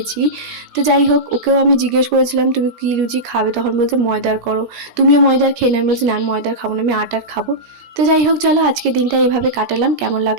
তো যাই হোক, ওকেও আমি জিজ্ঞেস করেছিলাম তুমি কি লুচি খাবে, তখন বলছে ময়দার করো, তুমিও ময়দার খেয়ে না। আমি বলছি না, আমি ময়দার খাবো না, আমি আটার খাবো। তো যাই হোক, চলো আজকে দিনটা এইভাবে কাটালাম, কেমন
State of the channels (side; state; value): left; late; 17 ms